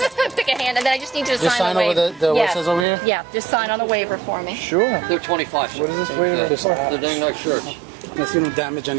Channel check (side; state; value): left; drops out; at 2.9 s